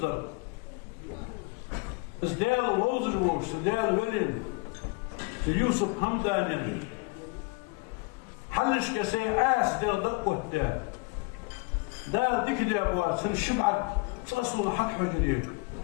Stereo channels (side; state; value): right; quieter; 28.4 dB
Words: إزدال ووزجوش إزدال ولين يوسف همدانين حلش كسي عاس دير دقوة دار ديك دي أبوات سن الشبعة تقصوا حق حجرين